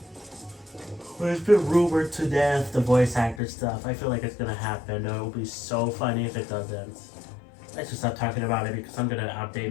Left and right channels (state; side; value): drops out; right; at 3.4 s